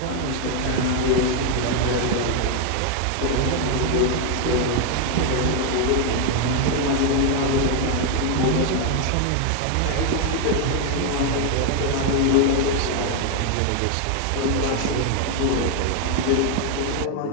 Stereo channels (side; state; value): both; different; correlation 0.00